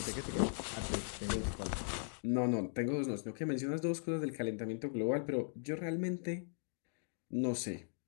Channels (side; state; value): right; silent; digital silence